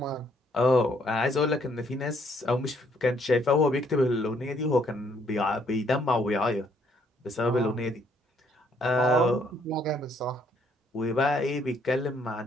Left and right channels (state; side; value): normal; both; correlation 0.68